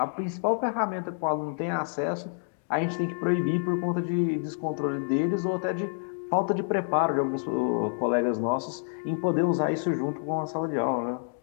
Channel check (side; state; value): right; silent; digital silence